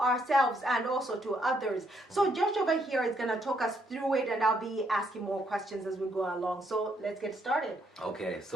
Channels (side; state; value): both; normal; correlation 0.73